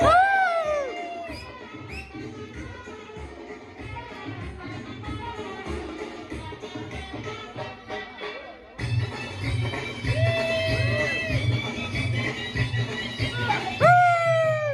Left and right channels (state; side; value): identical; both; correlation 1.00